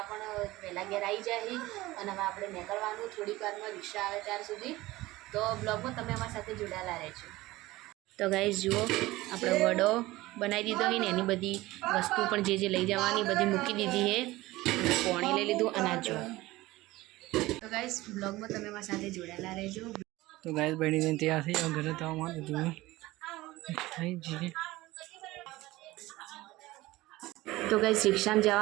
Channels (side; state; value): left; quieter; 18.7 dB